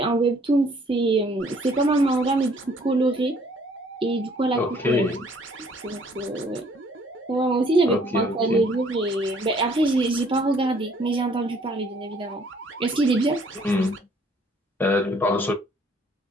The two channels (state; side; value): normal; both; correlation 0.61